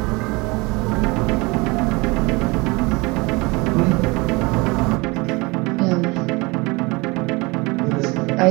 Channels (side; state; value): left; quieter; 25.6 dB